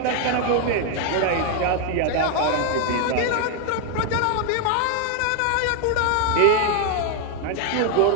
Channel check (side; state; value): both; different; correlation 0.00